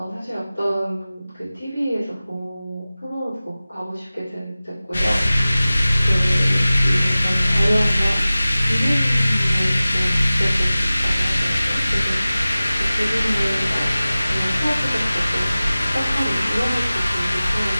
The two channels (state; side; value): inverted; both; correlation -0.97